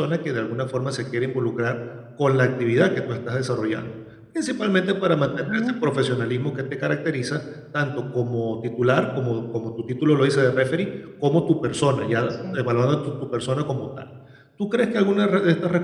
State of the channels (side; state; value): both; identical; correlation 1.00